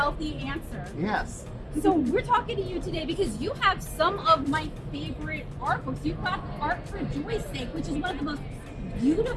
answer. Yes. So we're talking to you today because you have some of my favorite art books. You've got Art for Joy's Sake, which is one of the most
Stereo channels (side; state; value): both; identical; correlation 1.00